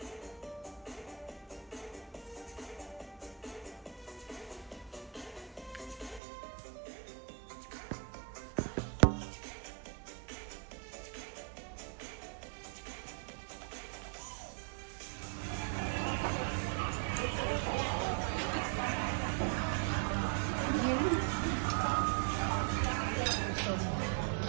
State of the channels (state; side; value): drops out; left; at 6.2 s